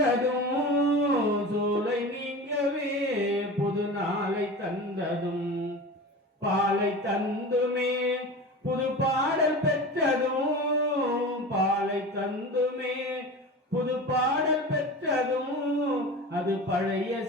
சூலை நீங்கவே புது நாளை தந்ததும், பாலை தந்துமே புது பாடல் பெற்றதும், பாலை தந்துமே புது பாடல் பெற்றதும், அது பழைய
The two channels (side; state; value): both; normal; correlation 0.32